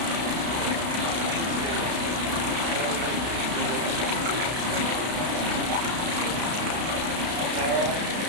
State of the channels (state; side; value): late; left; 33 ms